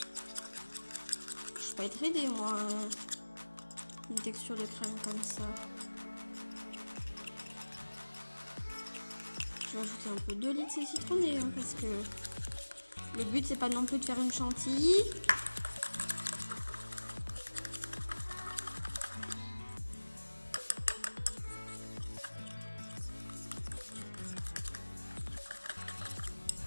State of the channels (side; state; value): both; inverted; correlation -1.00